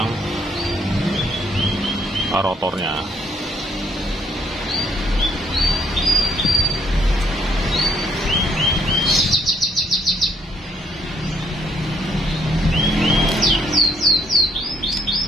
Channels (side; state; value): both; normal; correlation 0.68